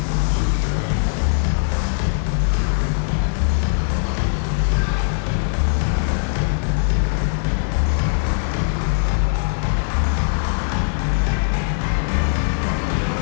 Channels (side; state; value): right; silent; digital silence